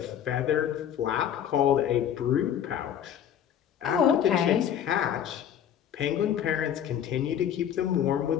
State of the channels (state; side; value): quieter; right; 9.6 dB